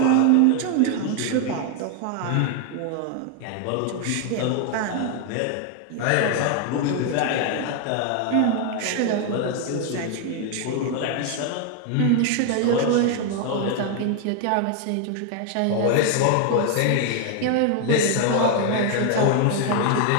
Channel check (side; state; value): both; different; correlation 0.00